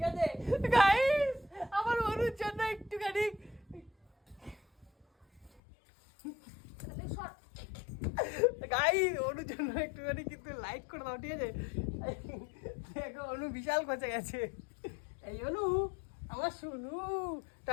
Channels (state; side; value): drops out; right; at 5.6 s